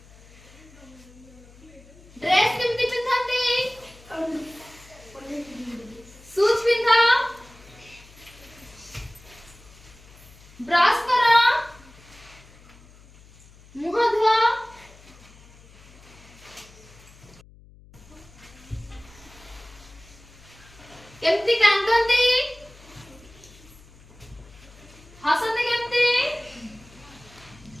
ଡ୍ରେସ୍ କେମିତି ପିନ୍ଧନ୍ତି? ସୁଜ୍ ପିନ୍ଧ। ବ୍ରଶ କର। ମୁହଁ ଧୁଅ। କେମିତି କାନ୍ଦନ୍ତି? ହସନ୍ତି କେମିତି?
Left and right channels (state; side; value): noise; left; hum, 23 dB below the sound